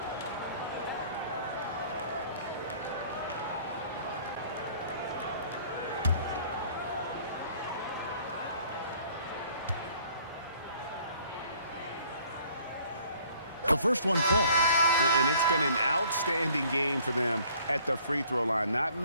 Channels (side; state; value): both; inverted; correlation -0.57